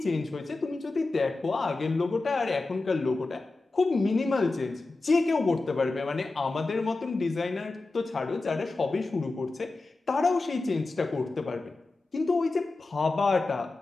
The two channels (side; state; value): right; quieter; 3.4 dB